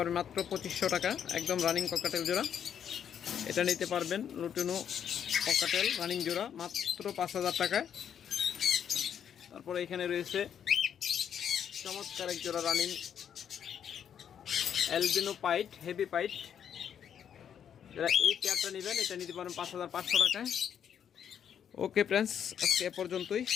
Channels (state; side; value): quieter; right; 8.7 dB